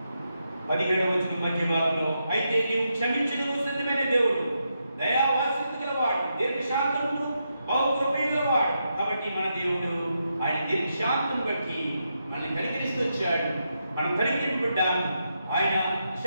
17వ వచనం మధ్య భాగంలో, అయితే నీవు క్షమించుటకు సిద్ధమైన దేవుడు, దయావాత్సల్యత గలవాడు, దీర్ఘశాంతమును బహుకృపయు గలవాడు. కాబట్టి మన దేవుడు ఆయన దీర్ఘశాంతం బట్టి మనల్ని కనికరిస్తూ వచ్చాడు. మనం కనికరింపడ్డాము. ఆయన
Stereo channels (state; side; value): inverted; both; correlation -0.84